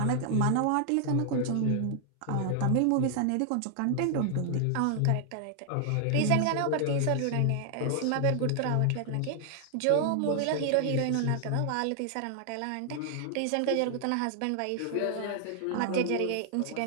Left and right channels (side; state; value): both; different; correlation 0.00